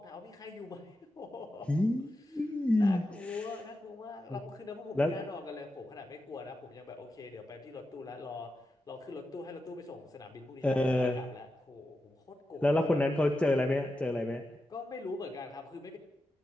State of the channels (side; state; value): both; normal; correlation 0.89